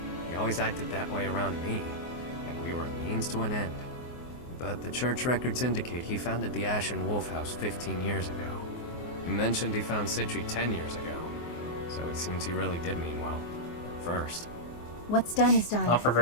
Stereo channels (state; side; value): late; right; 24 ms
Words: he always acted that way around me, like we were a means to an end. But the church records indicate he founded the Ashen Wolf House 15 years ago. He mentioned he found Citri 10 years ago, so it seems he really did mean well, at first. What's done is done. Not for